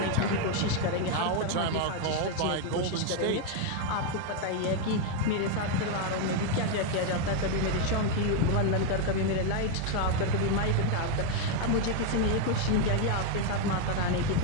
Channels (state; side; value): different; both; correlation 0.01